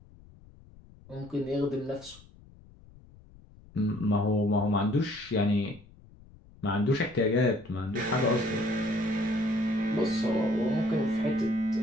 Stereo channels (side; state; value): left; noise; rumble, 23 dB below the sound